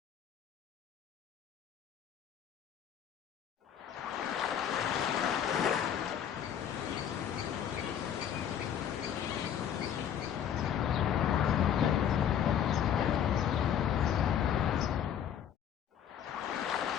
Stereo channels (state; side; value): quieter; right; 9.1 dB